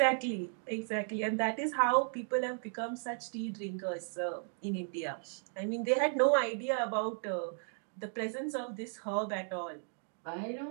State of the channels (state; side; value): silent; left; 54 dB below the other